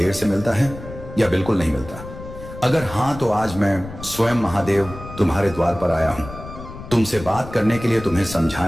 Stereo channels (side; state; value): left; noise; rumble, 13 dB below the sound